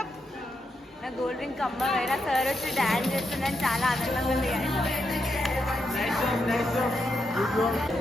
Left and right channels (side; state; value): both; normal; correlation 0.83